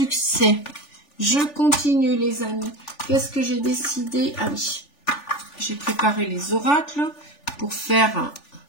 Je continue les amis. Qu'est-ce que j'ai décidé? Ah oui, j'ai préparé les oracles pour faire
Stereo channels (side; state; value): right; late; 3.4 ms